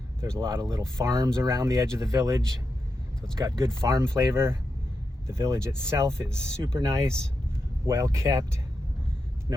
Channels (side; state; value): both; normal; correlation 0.87